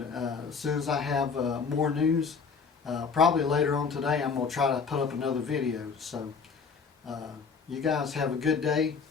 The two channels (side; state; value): right; quieter; 5.5 dB